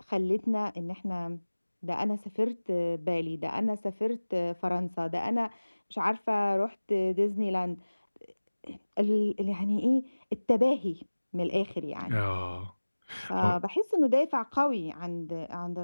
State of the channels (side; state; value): both; inverted; correlation -1.00